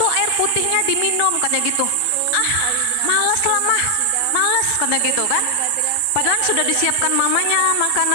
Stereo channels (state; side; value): different; both; correlation 0.00